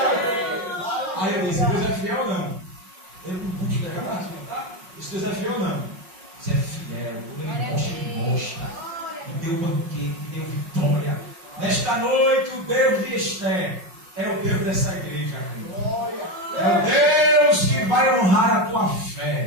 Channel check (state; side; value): late; left; 5.5 ms